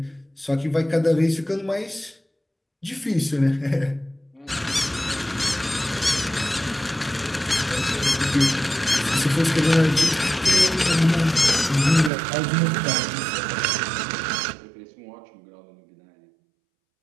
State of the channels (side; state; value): left; drops out; at 12.1 s